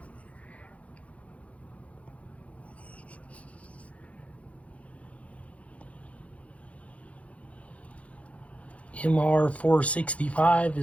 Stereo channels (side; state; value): right; late; 0.065 ms